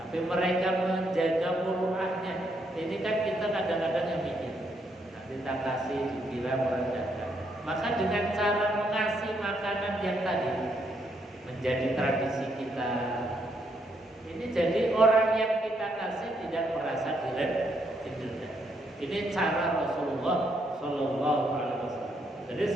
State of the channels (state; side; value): normal; both; correlation 0.75